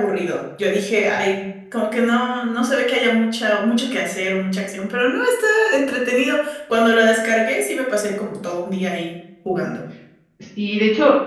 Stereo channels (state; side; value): identical; both; correlation 1.00